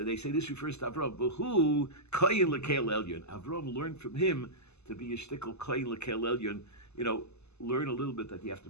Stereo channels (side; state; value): right; late; 0.80 ms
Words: they say this refers to Avram. V'hu Koyin L'Kel Elyon. Avram learned from him to be a shtickle Koyin L'Kel Elyon. Learn a little bit that you have to